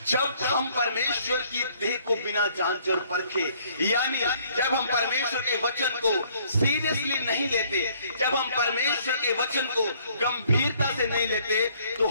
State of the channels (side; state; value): both; inverted; correlation -0.62